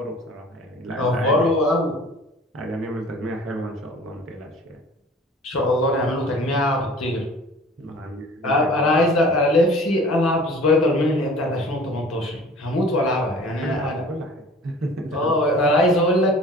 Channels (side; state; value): both; normal; correlation 0.46